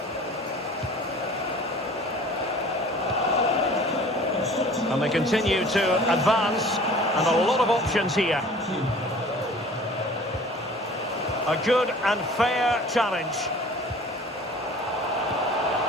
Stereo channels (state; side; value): normal; both; correlation 0.46